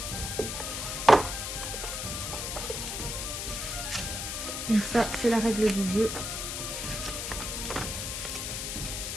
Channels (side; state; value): left; noise; hiss, 3 dB below the sound